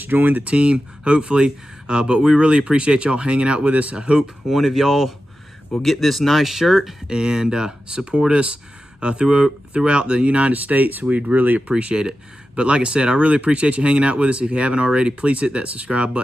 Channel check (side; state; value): both; normal; correlation 0.92